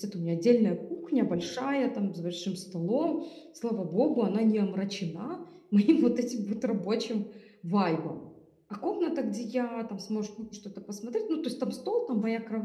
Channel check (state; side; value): identical; both; correlation 1.00